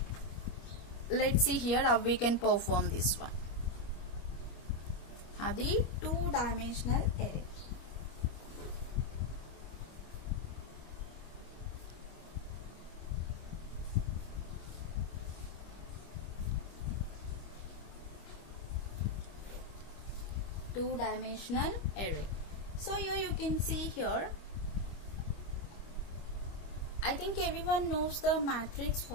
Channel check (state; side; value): late; right; 25 ms